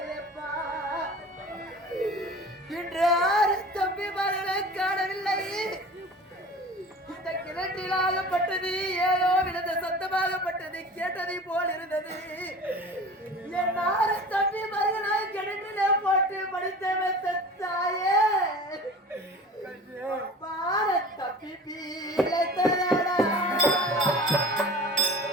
இன்று 6 தம்பிமார்களை காணவில்லை. இந்த கிணற்றிலாகப்பட்டது ஏதோ விழுந்த சத்தமாகப்பட்டது கேட்டதை போல் இருந்தது. என் 6 தம்பிமார்களை கிணற்றிலே போட்டு படித்த தாயே பாரத் தப்பி பீலை தரடா.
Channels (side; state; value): both; normal; correlation 0.39